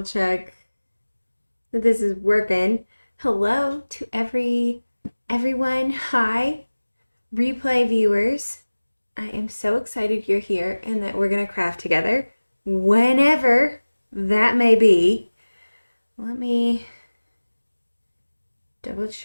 check that this is working. Hello to everyone. Hi, replay viewers. I am so excited you're here and that we're going to craft together whenever that may be. Let me double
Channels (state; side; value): inverted; both; correlation -1.00